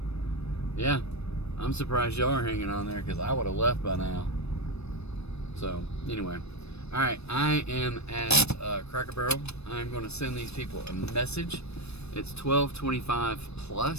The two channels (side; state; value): right; late; 0.79 ms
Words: Yeah. I'm surprised y'all are hanging on there, because I would have left by now. So, anyway. All right, I am at Cracker Barrel. I'm going to send these people a message. It's 12:25